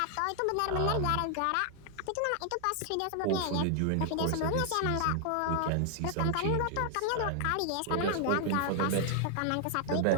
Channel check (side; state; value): both; different; correlation 0.00